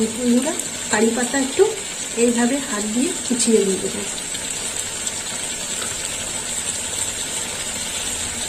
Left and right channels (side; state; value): both; identical; correlation 1.00